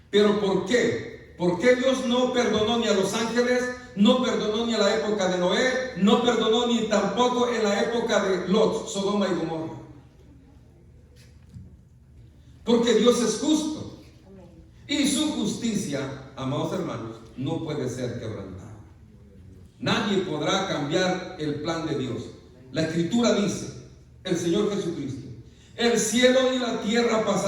¿Pero por qué? ¿Por qué Dios no perdonó ni a los ángeles? No perdonó ni a la época de Noé, no perdonó ni tampoco en la época de Lot, Sodoma y Gomorra. Porque Dios es justo. Y su justicia, amados hermanos, no puede ser quebrantada. Nadie podrá cambiar el plan de Dios. La Escritura dice, el Señor Jesucristo, el cielo y la tierra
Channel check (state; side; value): identical; both; correlation 1.00